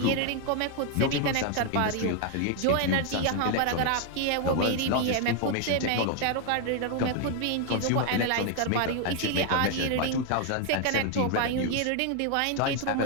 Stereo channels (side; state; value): both; different; correlation 0.01